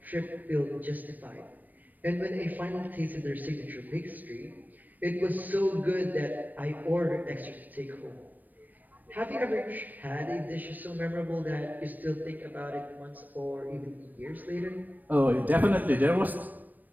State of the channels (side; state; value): left; late; 0.086 ms